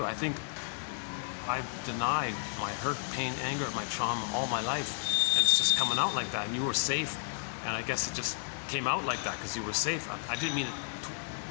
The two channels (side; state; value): right; silent; 56 dB below the other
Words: I think I've denied my hurt, pain, anger, my trauma all my life, and it's just coming out like that. And you were safe, and I guess it just came out like that because you were safe. I didn't mean it